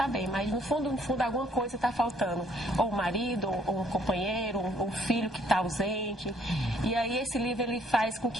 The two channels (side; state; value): both; normal; correlation 0.64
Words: bem, mas no fundo, alguma coisa está faltando. Ou um marido, ou um companheiro, ou um filho que está ausente. E aí esse livro, ele faz com